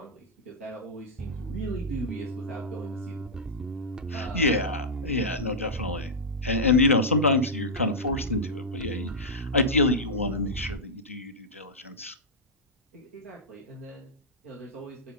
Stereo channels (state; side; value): normal; both; correlation -0.10